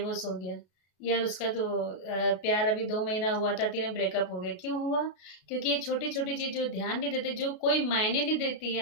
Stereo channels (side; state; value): right; late; 33 ms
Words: हो गया, यार उसका तो प्यार अभी 2 महीना हुआ था, 3 ब्रेकअप हो गया। क्यों हुआ? क्योंकि ये छोटी-छोटी चीज़ जो ध्यान नहीं देते, जो कोई मायने नहीं देती